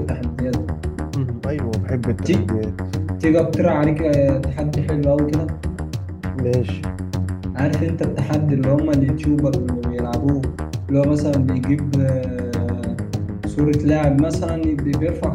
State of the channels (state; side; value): identical; both; correlation 1.00